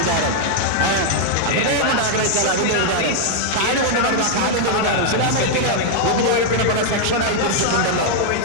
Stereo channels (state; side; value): different; both; correlation -0.01